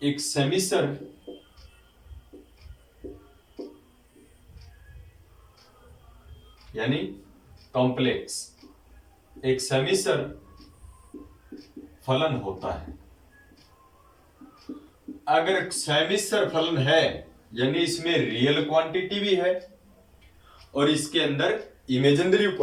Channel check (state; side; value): identical; both; correlation 1.00